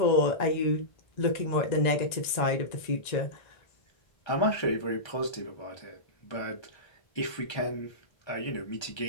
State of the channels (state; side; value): late; right; 1.9 ms